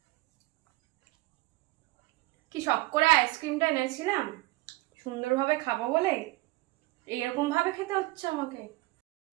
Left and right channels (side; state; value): left; quieter; 20.3 dB